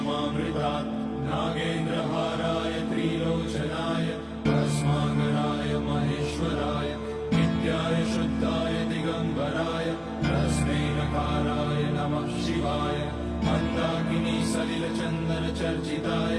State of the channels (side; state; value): both; identical; correlation 1.00